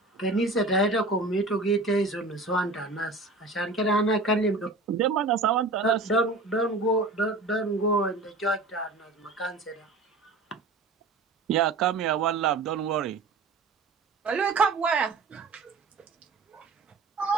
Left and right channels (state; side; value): quieter; left; 3.3 dB